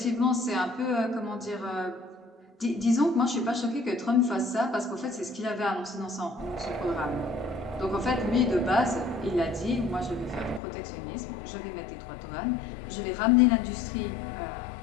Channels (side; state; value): right; drops out; at 10.6 s